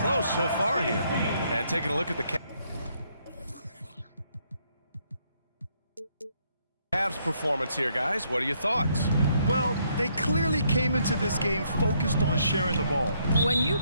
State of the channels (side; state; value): both; inverted; correlation -0.72